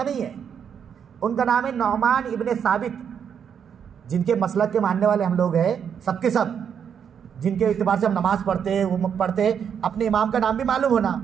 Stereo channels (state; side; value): quieter; left; 7.7 dB